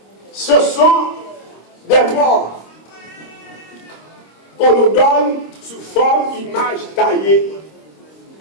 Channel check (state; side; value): late; right; 26 ms